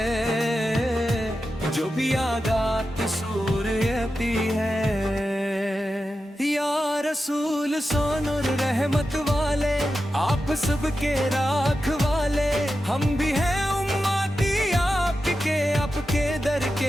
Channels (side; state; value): both; normal; correlation 0.91